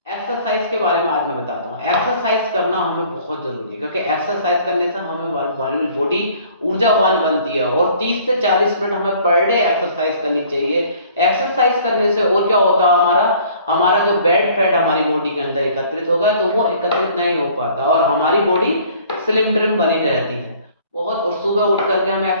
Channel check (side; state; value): both; inverted; correlation -0.55